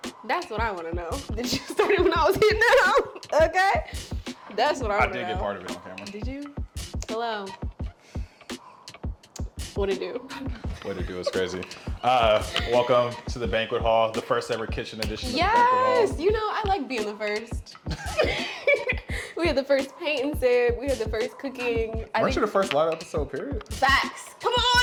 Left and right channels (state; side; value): identical; both; correlation 1.00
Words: That's what I want to know. Did you start it when I was hitting it out? Okay. That's what I want to know. I did get part of it on camera. Did you? Hello. What'd it do? What it do is crazy. Welcome to the banquet hall, the first ever kitchen edition of the banquet hall. Yes, you know, I like being the first. We had the first paint and sip. We had the first cooking. Weren't you the first live episode, period? Facts. Come